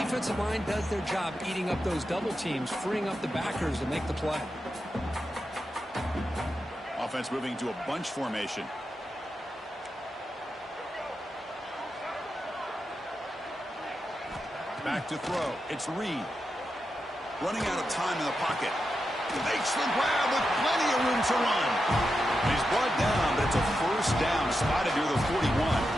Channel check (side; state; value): both; normal; correlation 0.88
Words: line does their job eating up those double teams, freeing up the backers to make the play. Offense moving to a bunch formation. Back to throw. It's Reed. Running out of time in the pocket. Makes the grab with plenty of room to run. He's brought down, but it's a first down spotted near the 41.